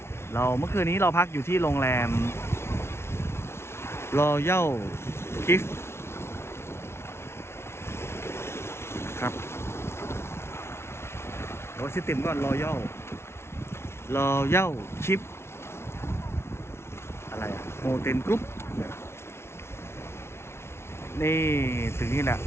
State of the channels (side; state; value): right; late; 0.12 ms